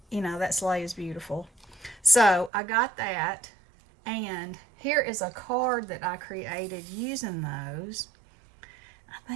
that sleigh is beautiful. So I got that. And here is a card that I created using those. I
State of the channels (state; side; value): drops out; left; at 2.5 s